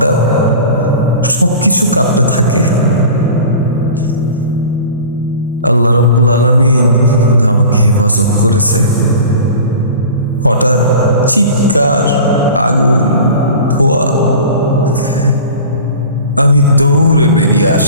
সবকিছু কাঁপতে থাকে। আল্লাহ রাব্বুল আলামিন আমাকে হেফাজত করেছে। হঠাৎ চিৎকার, আগুন, ধোঁয়া। আমি দৌড়ে বেরিয়ে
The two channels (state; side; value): inverted; both; correlation -0.38